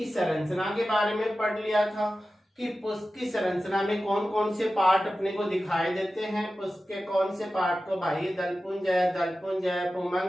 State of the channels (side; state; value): both; normal; correlation 0.94